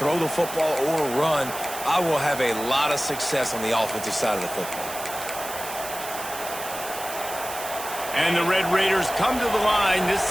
the football or run, I will have a lot of success on the offensive side of the football. And the Red Raiders come to the line. This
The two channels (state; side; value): noise; right; hiss, 10 dB below the sound